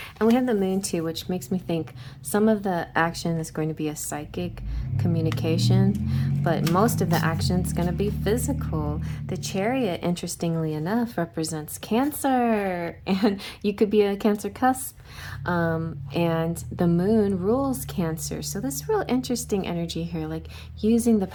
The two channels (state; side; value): identical; both; correlation 1.00